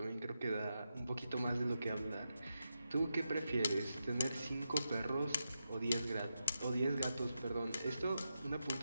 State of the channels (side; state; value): both; inverted; correlation -0.87